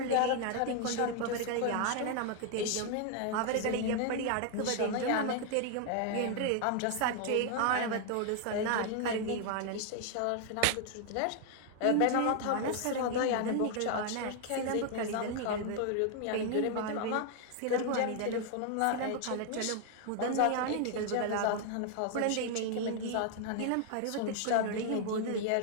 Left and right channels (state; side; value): different; both; correlation 0.00